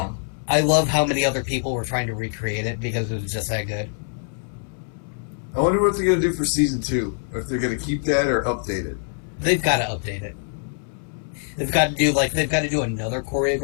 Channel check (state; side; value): silent; right; 63 dB below the other